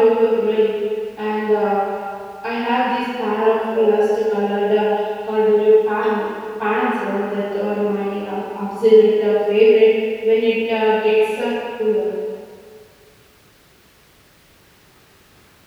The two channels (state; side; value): identical; both; correlation 1.00